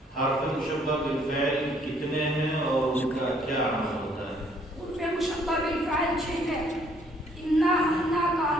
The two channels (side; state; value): both; normal; correlation 0.64